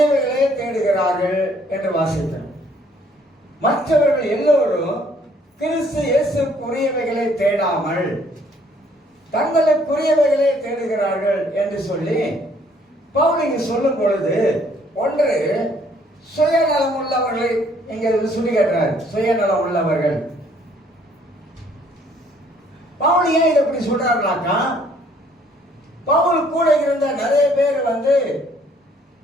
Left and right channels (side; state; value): both; normal; correlation 0.63